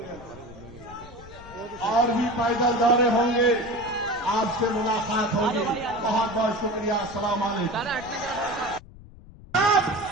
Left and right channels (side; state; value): left; noise; rumble, 19 dB below the sound